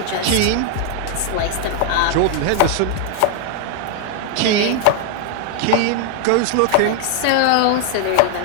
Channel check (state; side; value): different; both; correlation 0.00